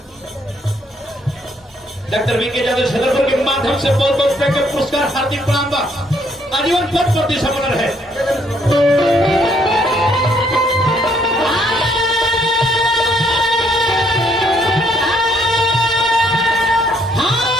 डॉक्टर वीके यादव छतरपुर के माध्यम से बहुत बहुत रुपए के पुरस्कार हार्दिक प्रणाम बा आजीवन पद प्रति समर्पण है।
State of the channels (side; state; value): both; normal; correlation 0.68